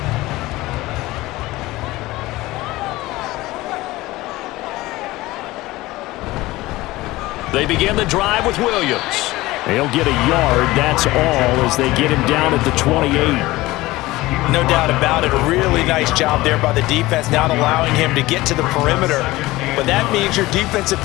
They begin the drive with Williams. They'll get a yard, that's all, as they get him down at the 28. No doubt about it. A really nice job there by the defense, not allowing him to get to the perimeter. But that means your defensive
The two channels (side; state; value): right; quieter; 18.9 dB